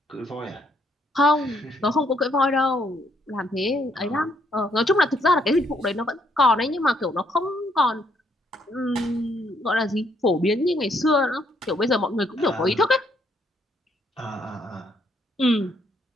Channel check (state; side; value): normal; both; correlation 0.71